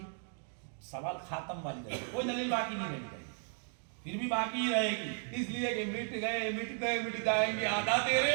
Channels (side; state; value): left; silent; 54 dB below the other